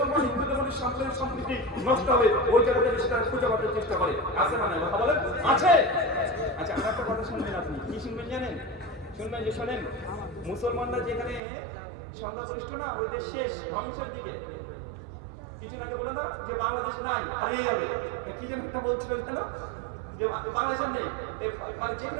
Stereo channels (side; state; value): left; drops out; at 11.4 s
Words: হিন্দুদের মধ্যে সাম্প্রদায়িক সম্প্রীতি নষ্ট হবে ওই জায়গাটা সেটা খুঁজে পাওয়ার চেষ্টা করে। আছে না নাই কথা বলেন? আছে। আচ্ছা, আমার একটা কথা শুনবেন, আপনি কি শুনবেন জানেন? শুনবেন যে শোনেন, মুসলমানরা যেখানে সংখ্যাগরিষ্ঠ না, ওই দেশ শেষ ধ্বংসের দিকে। কিছু আগে বলে না যে বাংলাদেশ নাই, হারিয়ে যাবে, কি যেন একটা বলছিল কেন যে বাংলাদেশের নেই, মানে